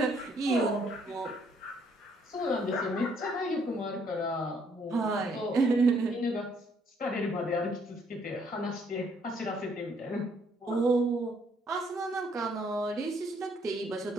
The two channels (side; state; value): both; normal; correlation 0.67